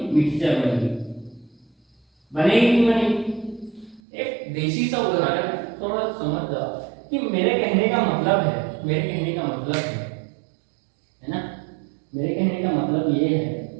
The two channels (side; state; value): left; drops out; at 4.0 s